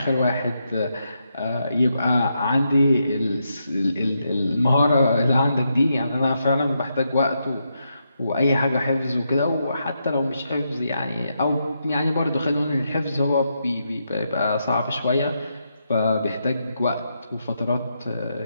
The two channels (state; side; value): inverted; both; correlation -0.82